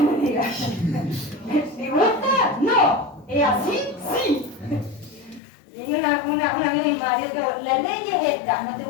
diga? ¿Me gusta? No. ¿Es así? Sí. Y una amiga de mi marido que la ley es esta, no te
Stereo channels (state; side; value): drops out; right; at 5.4 s